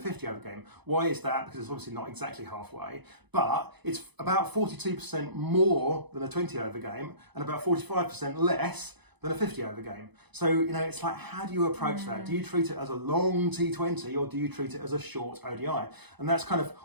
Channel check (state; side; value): late; left; 0.99 ms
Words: over game. Why is that? Because it's obviously not exactly halfway, but it's about 42% more than a 20 over game and about 45% less than a 50 over game. So, it's like, how do you approach that? Do you treat it as a long T20 or do you treat it as a short ODI? And that's kind of